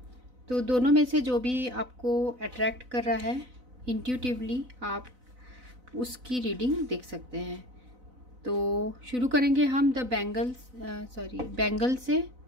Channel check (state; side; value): late; left; 4.0 ms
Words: तो दोनों में से जो भी आपको अट्रैक्ट कर रहा है इंट्यूटिवली आप उसकी रीडिंग देख सकते हैं। तो शुरू करेंगे हम बैंगल से,